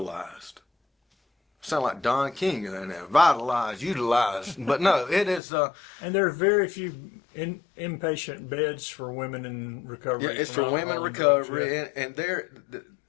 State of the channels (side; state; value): right; drops out; at 5.4 s